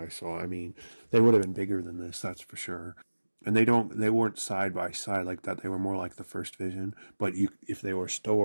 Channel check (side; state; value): both; inverted; correlation -1.00